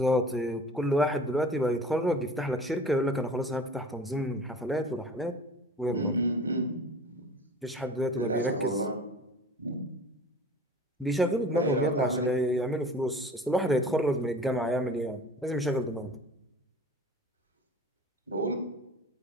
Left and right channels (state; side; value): normal; both; correlation 0.42